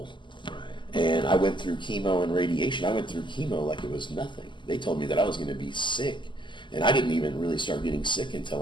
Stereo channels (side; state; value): right; late; 0.23 ms